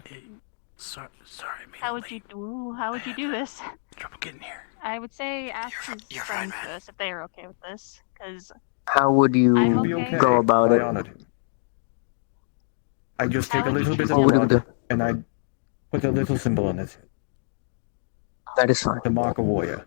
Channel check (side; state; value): right; silent; 61 dB below the other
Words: Sorry, How would you do this? trouble getting here. I would say ask his friends first if they are okay with this, because how would you I'm He'll be okay. okay. go about I it? honored him. I just take a How would little you bit of What would you blood do? and I put a little symbol on his head That is fine. to mark a warrior